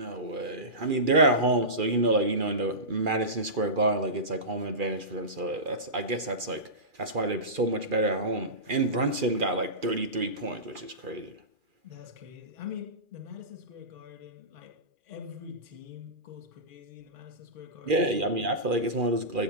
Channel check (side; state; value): left; late; 2.4 ms